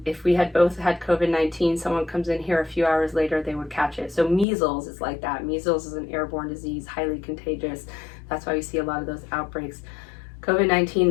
if we had both had COVID-19, someone comes in here a few hours later, they would catch it. So measles is like that. Measles is an airborne disease, highly contagious. That's why we see a lot of those outbreaks.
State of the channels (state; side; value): drops out; right; at 4.5 s